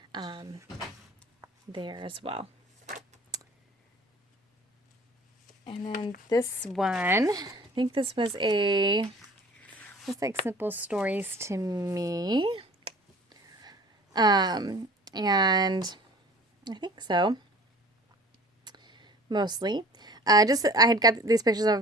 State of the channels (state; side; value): normal; both; correlation 0.46